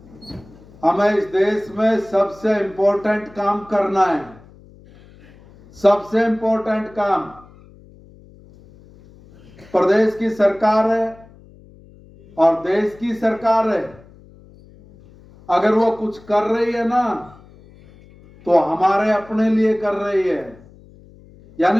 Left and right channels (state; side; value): noise; left; hum, 24 dB below the sound